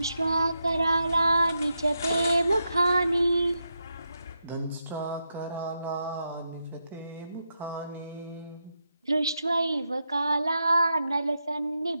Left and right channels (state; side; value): inverted; both; correlation -0.85